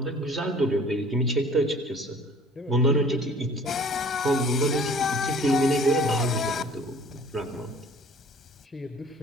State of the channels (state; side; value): normal; both; correlation 0.50